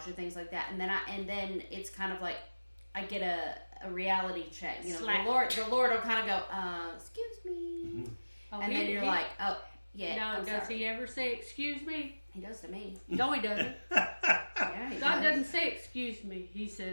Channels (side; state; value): both; inverted; correlation -1.00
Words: or things like that, and then it's kind of like I get a reality check. You know, Slap. the Lord will kind of go, "Excuse me," Oh, and then you're like, "Oh, yeah." No, I'm does sorry. he ever say excuse me? He does to me. No, he doesn't. Yeah, he God does. doesn't say excuse me. He